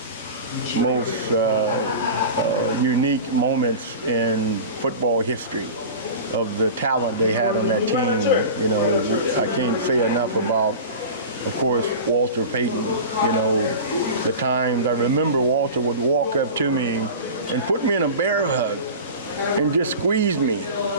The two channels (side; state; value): both; inverted; correlation -0.33